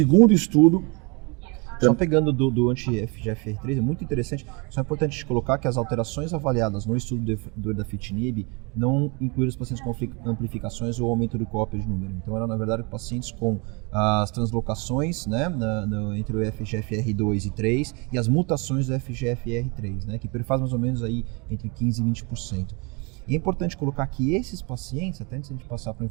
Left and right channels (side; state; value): left; quieter; 30.6 dB